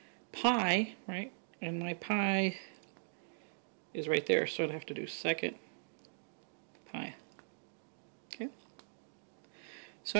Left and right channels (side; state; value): left; silent; digital silence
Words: pi, right? And my pi is right there, so I'd have to do second pi. Okay. So